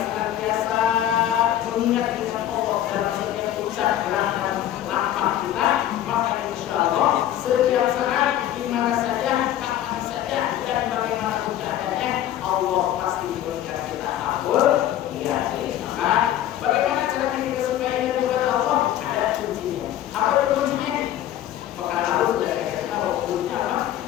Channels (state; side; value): quieter; right; 12.1 dB